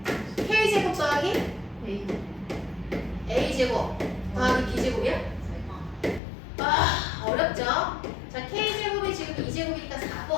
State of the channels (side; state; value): right; drops out; at 6.2 s